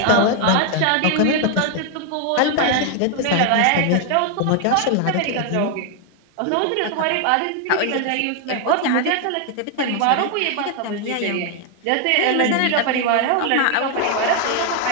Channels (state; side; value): different; both; correlation 0.00